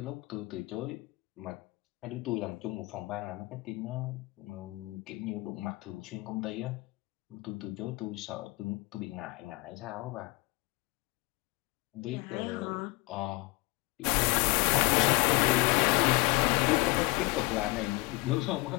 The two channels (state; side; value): quieter; right; 23.3 dB